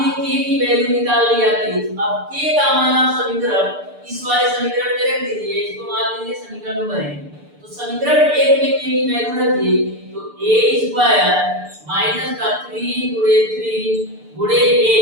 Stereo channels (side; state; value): left; late; 6.8 ms